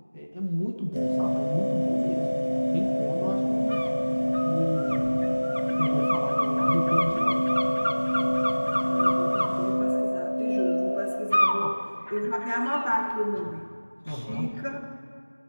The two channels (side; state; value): both; inverted; correlation -1.00